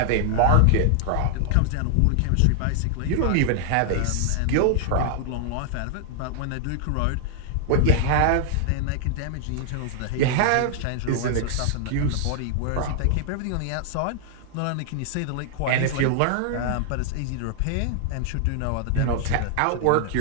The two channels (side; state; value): both; different; correlation -0.01